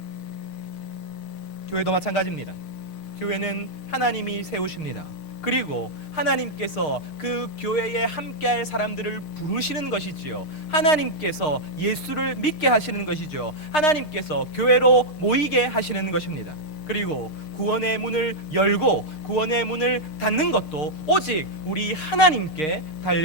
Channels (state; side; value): late; right; 6.5 ms